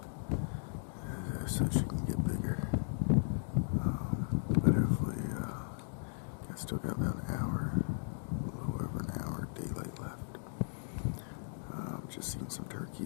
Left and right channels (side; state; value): right; silent; digital silence